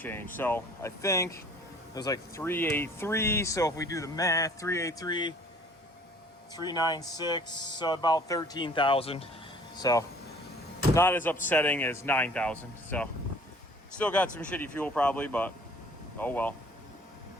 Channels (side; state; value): both; normal; correlation 0.53